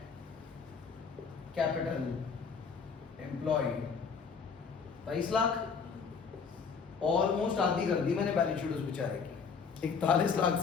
capital employed. 23 lakh, almost आधी कर दी मैंने बैलेंस शीट उस बेचारे की, 41 लाख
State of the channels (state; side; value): quieter; right; 5.7 dB